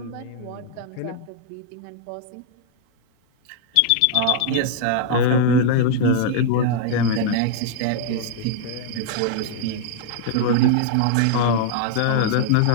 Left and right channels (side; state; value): both; different; correlation -0.01